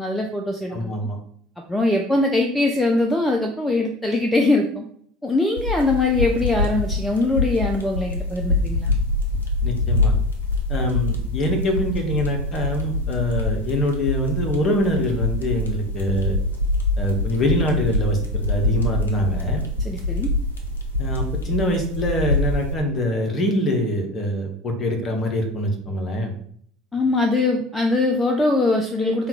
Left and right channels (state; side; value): normal; both; correlation 0.34